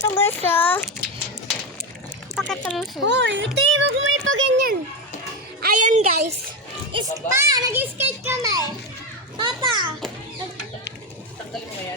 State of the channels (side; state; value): both; normal; correlation 0.13